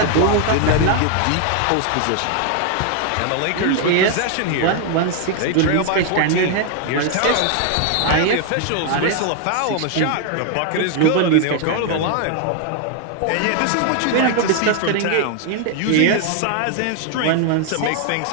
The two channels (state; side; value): different; both; correlation 0.00